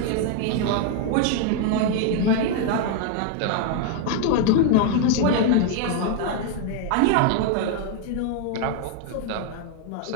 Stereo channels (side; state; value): both; different; correlation 0.00